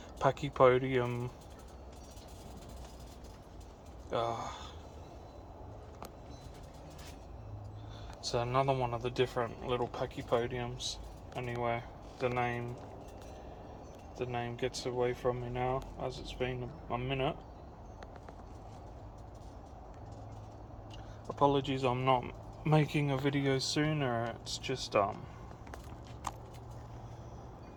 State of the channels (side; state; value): both; identical; correlation 1.00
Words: Pachypodium. It's another one of the different little Pachypodiums. Anyway, the name gets away from me now, as it's been a minute. Apologies, I'm not making a video sooner. It's just